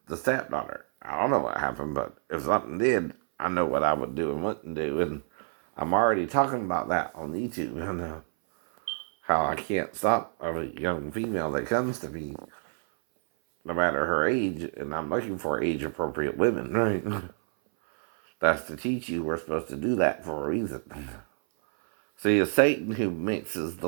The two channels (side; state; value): left; silent; 59 dB below the other